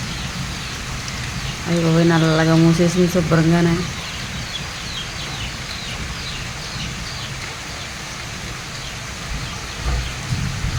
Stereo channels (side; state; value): both; identical; correlation 1.00